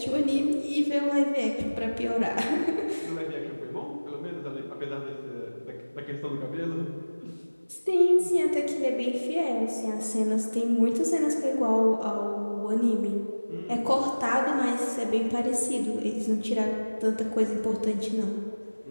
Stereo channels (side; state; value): both; inverted; correlation -1.00